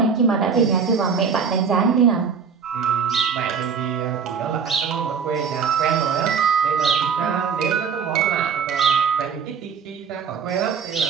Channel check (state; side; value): quieter; left; 6.3 dB